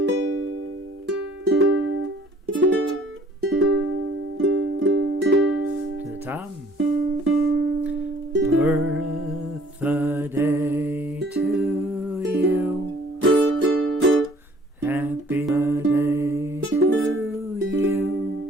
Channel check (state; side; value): normal; both; correlation 0.56